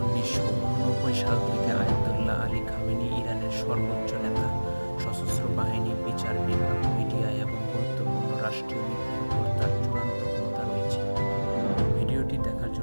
সাল থেকে আয়াতুল্লাহ আলী খামেনি ইরানের সর্বোচ্চ নেতা। সশস্ত্র বাহিনী, বিচার বিভাগ, মিডিয়া এবং গুরুত্বপূর্ণ রাষ্ট্রীয় নীতির উপর তার চূড়ান্ত ক্ষমতা রয়েছে। ভিডিওটি দেখার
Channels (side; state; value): both; inverted; correlation -1.00